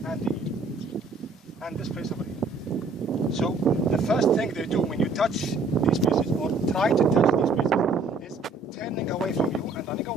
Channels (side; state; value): left; quieter; 3.7 dB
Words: the ear, and this place over here. So the first thing they do when you touch these places or try to touch these places is turning away from you and running